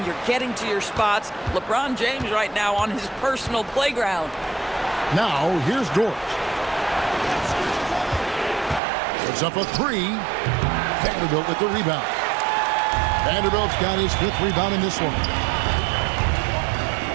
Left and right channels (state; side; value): drops out; left; at 8.8 s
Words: you're getting to your spots. LeBron James right now on his personal playground. Now, here's Dort. Puts up a 3. Vanderbilt with the rebound. Vanderbilt's got his 5th rebound in this one.